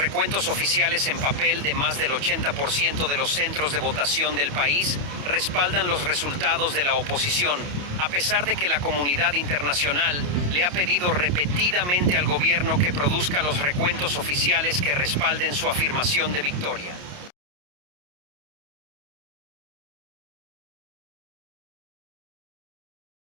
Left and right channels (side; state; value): left; late; 28 ms